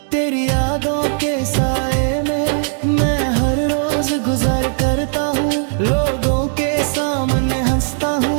तेरी यादों के साए में मैं हर रोज गुजर करता हूँ, लोगों के सामने हंसता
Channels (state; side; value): silent; left; 68 dB below the other